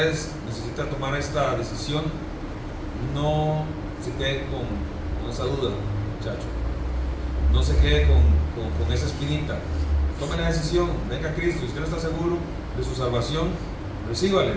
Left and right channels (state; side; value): identical; both; correlation 1.00